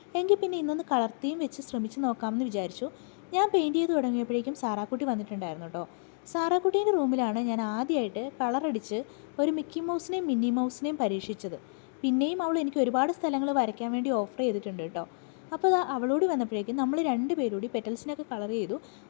എങ്കിൽ പിന്നെ ഇന്നൊന്ന് കളർ തീം വെച്ച് ശ്രമിച്ച് നോക്കാമെന്ന് വിചാരിച്ചു. ഞാൻ പെയിൻറ്റ് ചെയ്ത് തുടങ്ങിയപ്പോഴേക്കും സാറാക്കുട്ടി വന്നിട്ടുണ്ടായിരുന്നു കേട്ടോ. സാറാക്കുട്ടീൻ്റെ റൂമിലാണ് ഞാൻ ആദ്യമായിട്ട് കളറടിച്ച് ഒരു മിക്കി മൗസിനെയും മിന്നി മൗസിനെയും പരീക്ഷിച്ചത്. പിന്നെയും അവൾ എനിക്ക് ഒരുപാട് സ്ഥലങ്ങൾ വരയ്ക്കാൻ വേണ്ടി ഓഫർ ചെയ്തിട്ടുണ്ട് കേട്ടോ. അപ്പോൾ അവളോട് വന്നപ്പോഴേക്കും നമ്മൾ രണ്ടുപേരൂടി പെറ്റൽസിനൊക്കെ കളർ ചെയ്തു.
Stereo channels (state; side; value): silent; right; digital silence